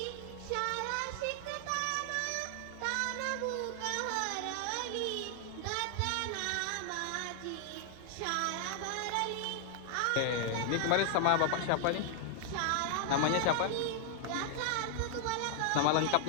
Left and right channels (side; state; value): both; different; correlation 0.00